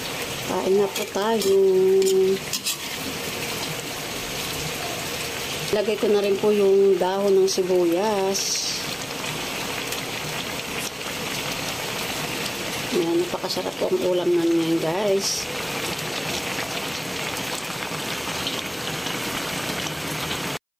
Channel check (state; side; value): identical; both; correlation 1.00